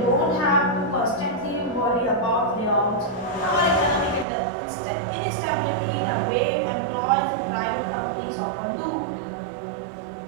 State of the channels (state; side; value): drops out; left; at 4.2 s